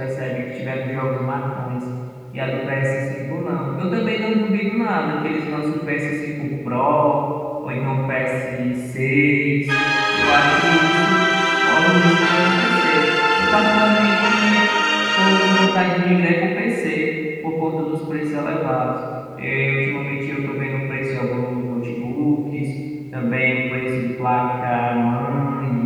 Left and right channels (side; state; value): both; identical; correlation 1.00